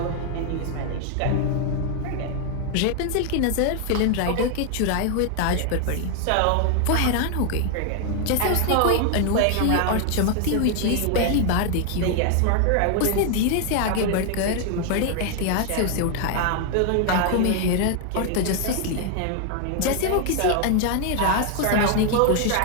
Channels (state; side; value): different; both; correlation 0.00